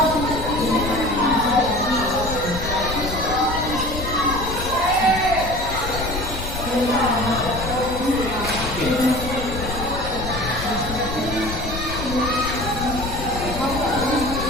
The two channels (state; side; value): noise; left; rumble, 7 dB below the sound